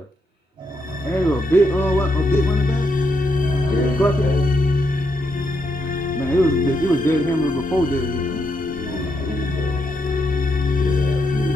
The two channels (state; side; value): normal; both; correlation 0.80